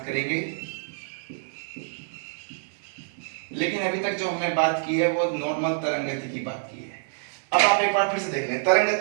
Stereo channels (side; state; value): left; silent; digital silence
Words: करेंगे, लेकिन अभी तक जो हमने बात की है वो नॉर्मल तरंग गति की बात की है। अब आप एक बार फिर से देख लें, तरंग